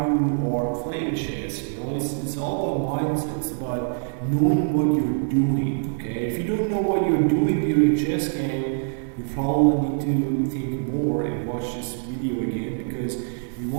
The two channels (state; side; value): silent; left; 62 dB below the other